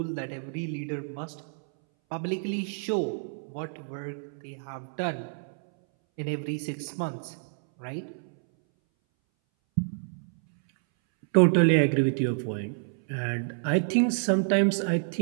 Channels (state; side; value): silent; left; 59 dB below the other